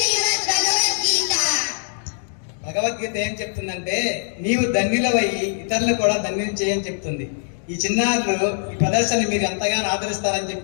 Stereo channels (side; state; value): right; silent; digital silence